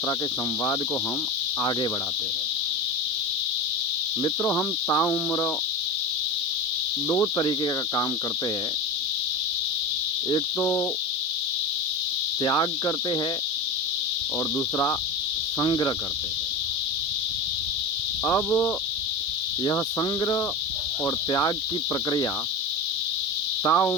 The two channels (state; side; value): normal; both; correlation 0.25